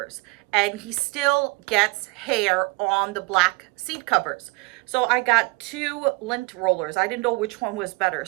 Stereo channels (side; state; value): left; quieter; 27.1 dB